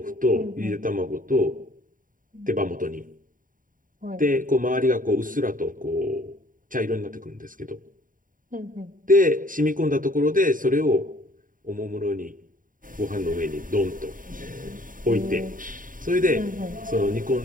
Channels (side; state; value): left; late; 0.39 ms